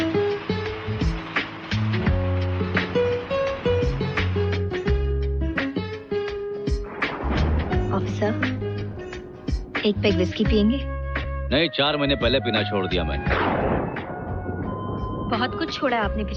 एक पैक विस्की पियेंगे? नहीं, 4 महीने पहले पीना छोड़ दिया मैंने। बहुत कुछ छोड़ा आपने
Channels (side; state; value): both; identical; correlation 1.00